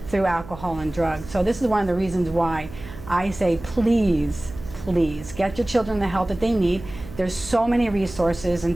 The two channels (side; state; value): right; noise; hum, 15 dB below the sound